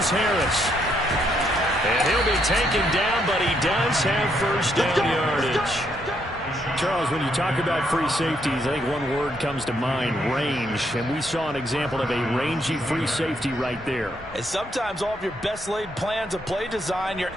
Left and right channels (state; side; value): normal; both; correlation 0.74